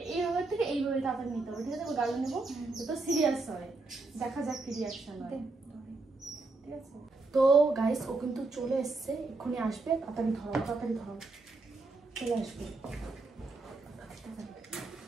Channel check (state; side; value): quieter; left; 3.5 dB